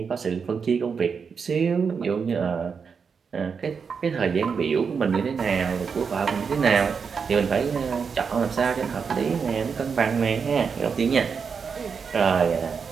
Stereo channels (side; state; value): left; quieter; 5.9 dB